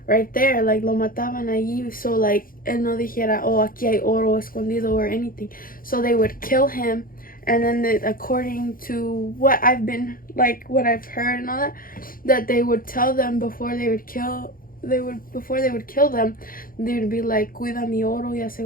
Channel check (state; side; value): late; right; 0.41 ms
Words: right there, like lo mataban allí, so like él no dijera, oh, aquí hay oro escondido or anything. So they would kill him, and then according to what I've been, like what I've heard and all that, that they would tell them before they would kill them, they would be like, cuida mi oro y